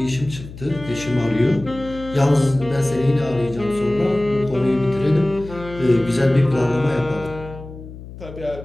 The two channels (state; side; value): noise; left; hum, 14 dB below the sound